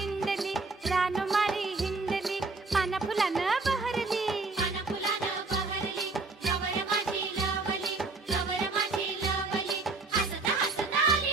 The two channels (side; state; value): left; quieter; 3.8 dB